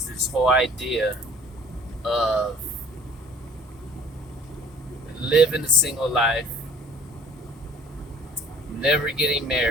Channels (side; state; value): both; normal; correlation 0.52